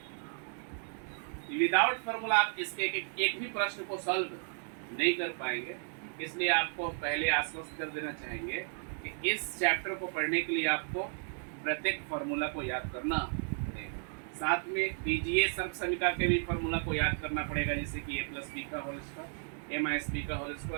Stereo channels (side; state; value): left; silent; 55 dB below the other